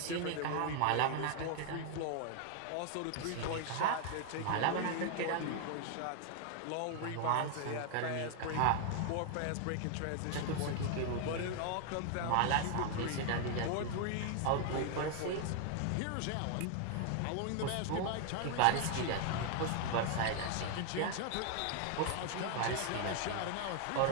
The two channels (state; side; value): different; both; correlation 0.00